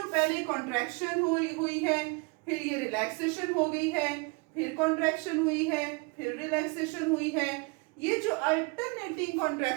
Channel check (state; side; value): quieter; left; 29.6 dB